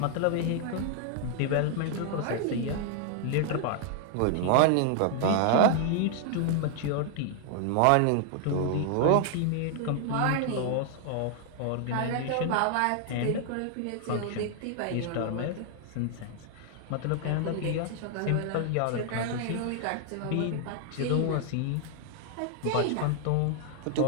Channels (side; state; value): both; different; correlation 0.00